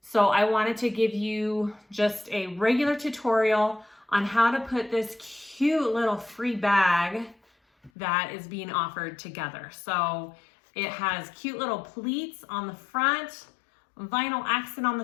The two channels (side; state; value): right; drops out; at 7.9 s